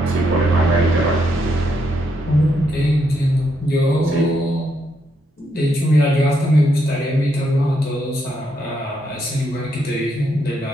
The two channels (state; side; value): normal; both; correlation 0.77